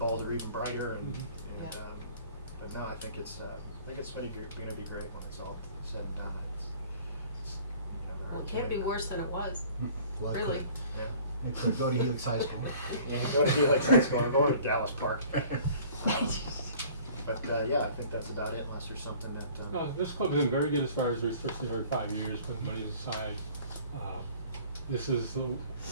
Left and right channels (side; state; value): both; inverted; correlation -0.50